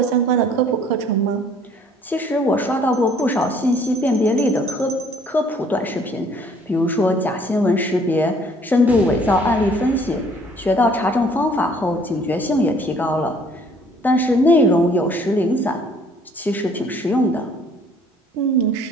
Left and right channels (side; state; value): both; normal; correlation 0.58